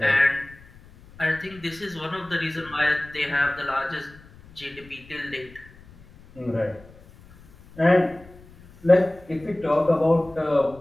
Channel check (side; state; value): left; noise; rumble, 23 dB below the sound